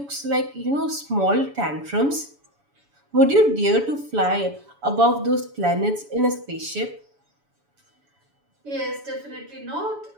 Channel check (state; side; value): late; left; 7.0 ms